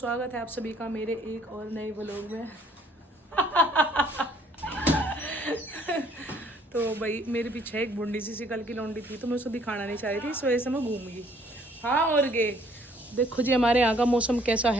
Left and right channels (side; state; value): both; normal; correlation 0.61